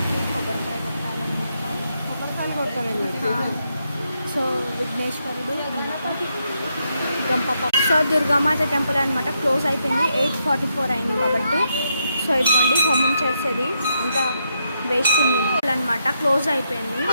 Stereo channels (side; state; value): both; inverted; correlation -0.80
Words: కొబ్బరికాయ కొట్టాలన్నమాట. కొబ్బరికాయలు కొట్టాలి. సో విఘ్నేశ్వరుడు అనమాట, గంప. సో దుర్గామాత టెంపుల్ అనమాట క్లోజ్ అయిపోయింది, 8:44 అయింది కాబట్టి. సో ఇదిగోండి హోమం చేసేది అంతా వేస్ట్ ఉంది అనమాట, క్లోజ్ అయిపోయింది.